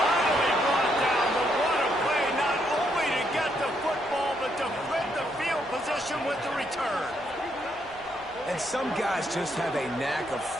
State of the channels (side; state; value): right; noise; rumble, 26 dB below the sound